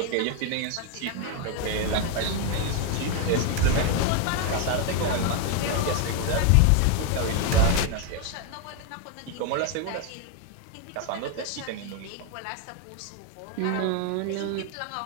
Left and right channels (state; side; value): different; both; correlation 0.01